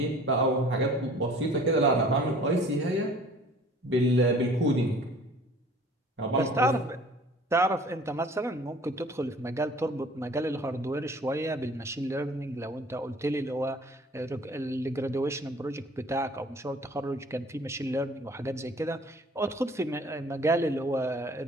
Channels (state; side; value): normal; both; correlation 0.50